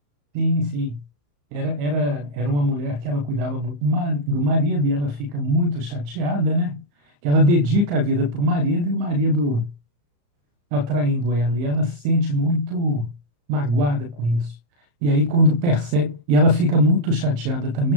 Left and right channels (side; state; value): left; late; 35 ms